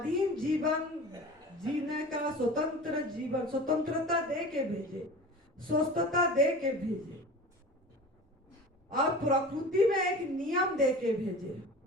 जीवन जीने का स्वतंत्र जीवन, स्वतंत्रता दे के भेजे, स्वस्थता दे के भेजे, और प्रकृति में एक नियम दे के भेजे।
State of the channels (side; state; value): both; normal; correlation 0.36